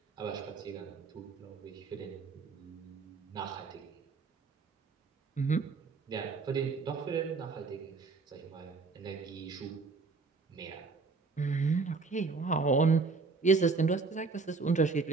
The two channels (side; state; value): left; quieter; 4.3 dB